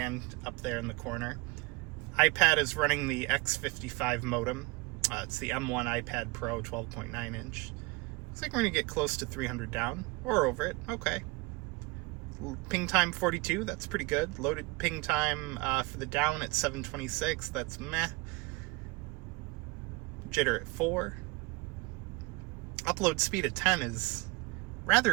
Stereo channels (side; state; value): left; quieter; 24.8 dB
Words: up there in the corner. iPad is running the X55 modem. It's the M1 iPad Pro 12.9 inch. Looks like we're gonna get close to 300 down, or over it, okay. Ping time 42, that's pretty good. Loaded ping time for the down at 726, that's meh. Jitter at 4. Upload speed at 10 is